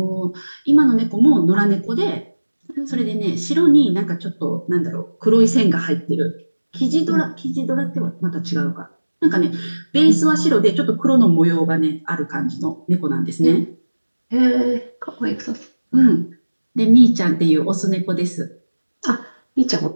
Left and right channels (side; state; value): both; inverted; correlation -1.00